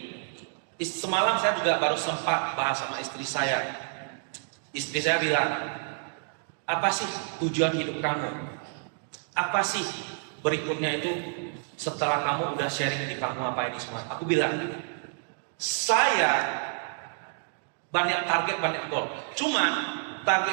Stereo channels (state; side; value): silent; left; digital silence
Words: semalam saya juga baru sempat bahas sama istri saya. Istri saya bilang, apa sih tujuan hidup kamu? Apa sih berikutnya itu setelah kamu udah sharing di panggung apa ini semua? Aku bilang, saya banyak target, banyak goal. Cuman